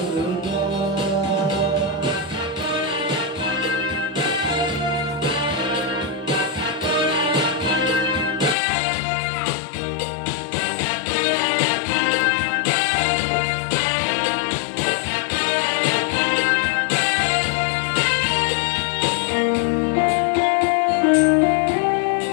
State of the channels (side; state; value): right; drops out; at 8.6 s